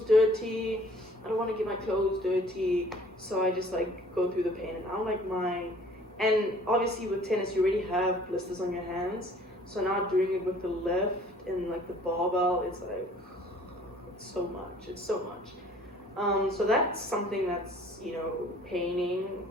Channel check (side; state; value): both; normal; correlation 0.54